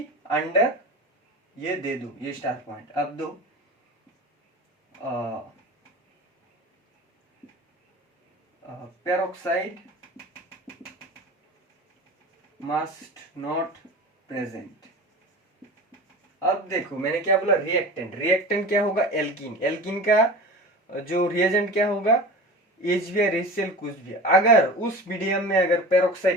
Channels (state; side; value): normal; both; correlation 0.34